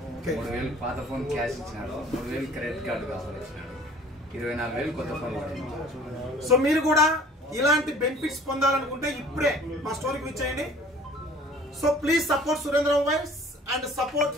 3,000 పాత ఫోన్ క్యాష్ ఇచ్చినాడు, 3,000 క్రెడిట్ కార్డు ఆఫర్ ఇచ్చినాడు, 24,000 కొత్త ఫోన్ పడింది. సో మీరు కూడా ఇలాంటి బెనిఫిట్స్ పొందాలనుకుంటే ఇప్పుడే మా స్టోర్కి విజిట్ చేయండి. So please support Surendra mobiles and support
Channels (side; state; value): both; normal; correlation 0.50